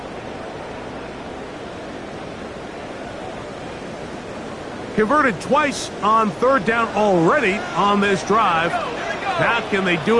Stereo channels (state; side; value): identical; both; correlation 1.00